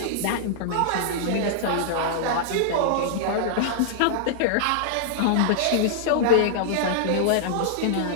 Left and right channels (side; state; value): both; different; correlation -0.02